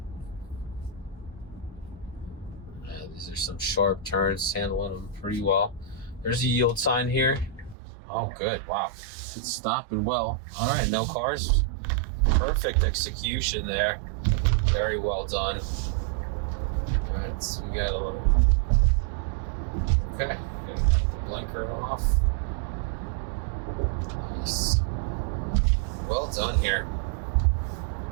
These are some sharp turns, handling them pretty well. There's a yield sign here. Oh, good. Wow. It's stopping well. All right, no cars. Perfect execution there. Very well done. All right, so we got a little. Okay, gonna take the blinker off. Nice. Well done here.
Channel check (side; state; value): left; drops out; at 7.8 s